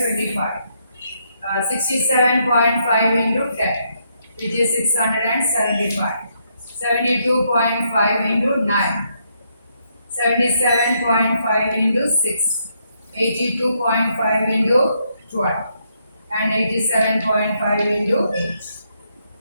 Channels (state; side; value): inverted; both; correlation -0.75